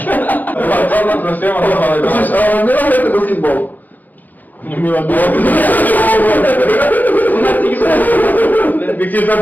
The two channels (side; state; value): right; late; 0.083 ms